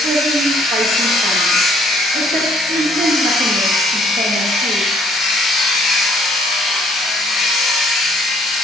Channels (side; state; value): both; normal; correlation 0.62